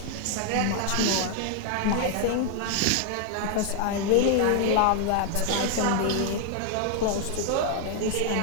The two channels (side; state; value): both; different; correlation 0.00